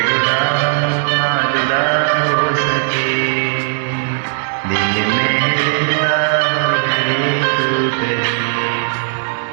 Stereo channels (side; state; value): left; silent; 69 dB below the other